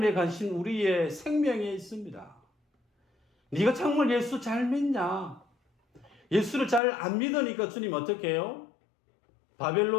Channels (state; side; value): drops out; right; at 6.8 s